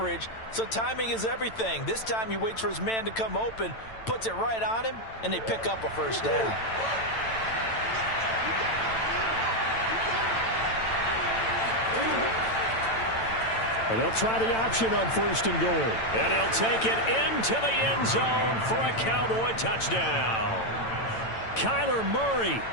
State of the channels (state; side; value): late; right; 9.0 ms